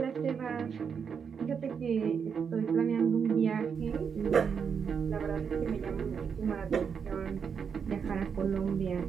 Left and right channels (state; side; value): quieter; left; 6.6 dB